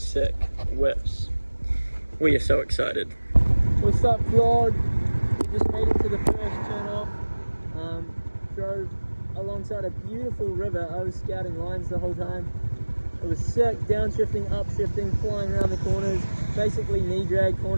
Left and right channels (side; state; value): both; inverted; correlation -1.00